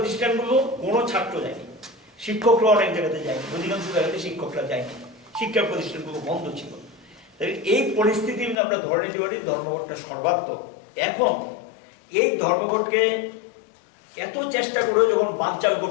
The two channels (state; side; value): drops out; right; at 8.6 s